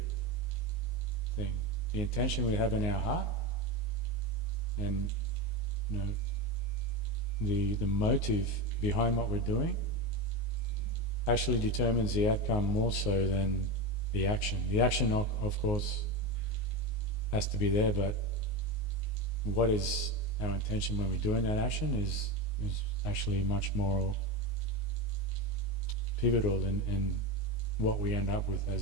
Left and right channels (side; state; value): right; late; 19 ms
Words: thing. The intention we have in our heart and the motive behind what we're doing actually determines the outcome more so than the action. The action, of course, has to be there, but what is our intention when we're doing that action is actually much more pivotal in what we end up with